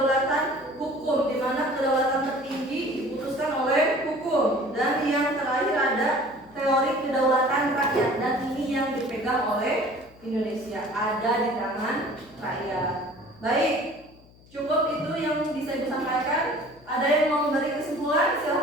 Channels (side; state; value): left; noise; hum, 26 dB below the sound